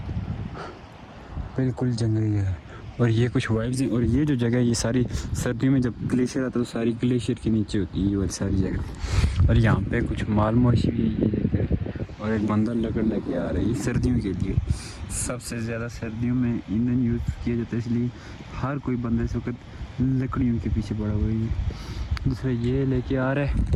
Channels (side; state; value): both; identical; correlation 1.00